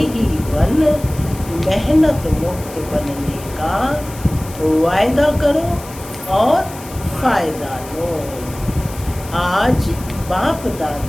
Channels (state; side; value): noise; left; hiss, 17 dB below the sound